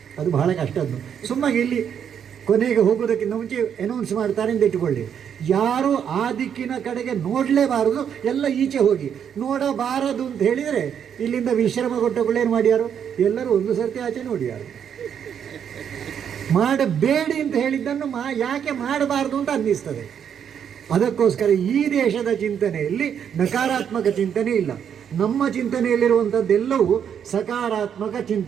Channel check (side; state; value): left; quieter; 8.3 dB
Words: ಅದು ಬಹಳ ಕಷ್ಟದ್ದು. ಸುಮ್ಮಾಗಿ ಇಲ್ಲಿ ಕೊನೆಗೆ ಹೋಗೋದಕ್ಕಿಂತ ಮುಂಚೆ ಅನೌನ್ಸ್ ಮಾಡ್ತಾರೆ ಅಂತ ಇಟ್ಟುಕೊಳ್ಳಿ, ಯಾರು ಆ ದಿಕ್ಕಿನ ಕಡೆಗೆ ನೋಡಲೇಬಾರದು, ಎಲ್ಲ ಈಚೆ ಹೋಗಿ. ನೋಡಬಾರದು ಅಂತ ಹೇಳಿದರೆ ಇಲ್ಲಿಂದ ವಿಶ್ರಮ ಕೊಟ್ಟಗಳೇನು ಮಾಡ್ಯಾರು? ಎಲ್ಲರೂ ಒಂದು ಸರ್ತಿ ಆಚೆ ನೋಡ್ಯಾರು. ಮಾಡಬೇಡಿ ಅಂತ ಹೇಳಿದ್ದನ್ನು ಯಾಕೆ ಮಾಡಬಾರ್ದು ಅಂತ ಅನ್ನಿಸ್ತದೆ. ಅದಕ್ಕೋಸ್ಕರ ಈ ದೇಶದ ಚಿಂತನೆಯಲ್ಲಿ ನಕಾರಾತ್ಮಕ ಚಿಂತನೆ ಇಲ್ಲ. ನಮ್ಮ ಚಿಂತನೆಯಲ್ಲಿರುವಂಥದ್ದೆಲ್ಲವೂ ಸಕಾರಾತ್ಮಕ